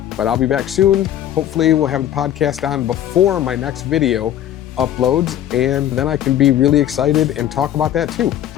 But I'll be back soon. Hopefully we'll have the podcast on before my next video uploads, and then I can be really excited and talk about that too.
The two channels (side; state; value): right; quieter; 11.4 dB